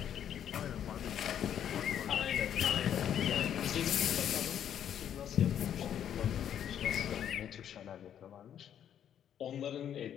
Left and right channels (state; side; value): quieter; right; 9.7 dB